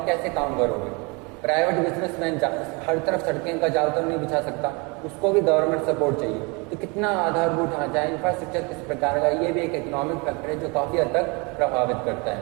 कैसे काम करोगे? प्राइवेट बिजनेसमैन हर तरफ सड़कें का जाल तो नहीं बिछा सकता, उसको भी गवर्नमेंट सपोर्ट चाहिए। तो कितना आधारभूत ढांचा है, इंफ्रास्ट्रक्चर किस प्रकार का, ये भी एक इकोनॉमिक फैक्टर है जो काफ़ी हद तक प्रभावित करता है।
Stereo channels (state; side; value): quieter; left; 29.4 dB